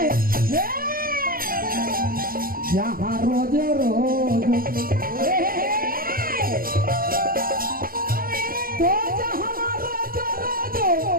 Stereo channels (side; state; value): left; late; 0.42 ms